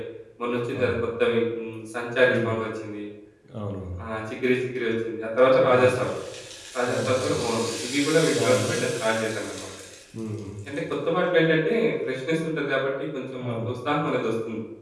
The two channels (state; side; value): identical; both; correlation 1.00